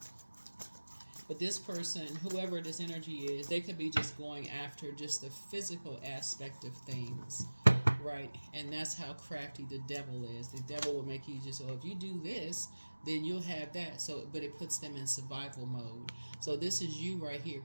but this person, whoever this energy is, they could be just going after just the physical aspect of things, right? And that's how crafty the devil is. The devil will make you just, if you do this, then you'll have that. So, but it puts them in survival mode. So this is you right here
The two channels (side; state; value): both; inverted; correlation -1.00